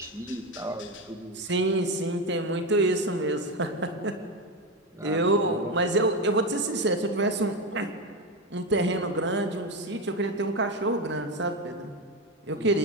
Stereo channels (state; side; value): normal; both; correlation 0.14